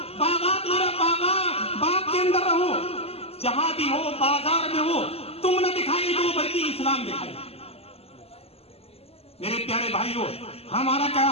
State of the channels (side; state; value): right; late; 0.29 ms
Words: باغات میں باغ کے اندر رہو، جہاں بھی ہو، بازار میں ہو، تم نہ دکھائی دو بلکہ اسلام دکھائی۔ میرے پیارے بھائیوں، ہمارا کیا